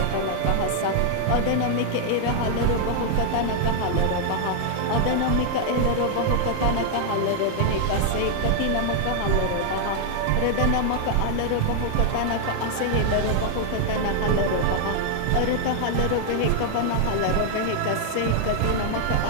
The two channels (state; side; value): different; both; correlation 0.00